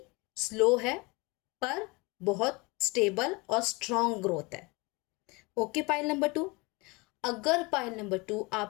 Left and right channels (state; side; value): quieter; right; 26.6 dB